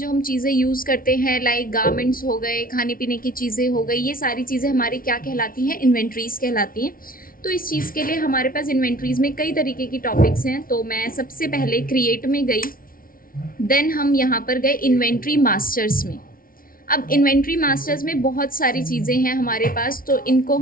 हम चीज़ें यूज़ करते हैं, लाइक गारमेंट्स हो गए, खाने पीने की चीज़ें हो गई, ये सारी चीज़ें हमारी क्या कहलाती हैं? इन्वेंट्रीज़ कहलाती हैं। तो इस चीज़ के लिए हमारे पास इन्वेंट्रीज़ में कई तरीके की टॉपिक्स हैं। तो मैं सबसे पहले क्रिएट में गई, देन हम यहाँ पर गए इन्वेंट्री मास्टर्स में। अब इन्वेंट्री मास्टर्स में बहुत सारी चीज़ें हैं हमारे पास, तो इनको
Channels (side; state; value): right; late; 0.42 ms